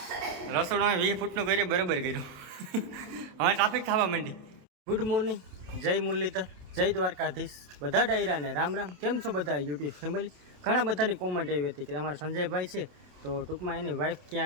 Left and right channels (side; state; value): left; late; 27 ms